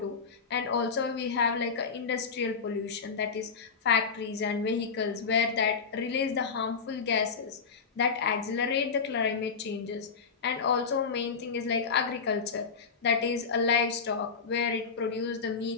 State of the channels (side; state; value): right; quieter; 5.5 dB